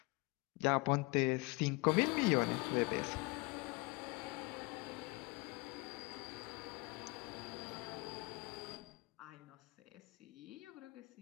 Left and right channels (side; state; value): right; quieter; 25.9 dB